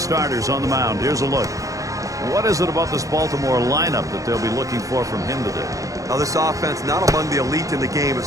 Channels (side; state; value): left; late; 0.16 ms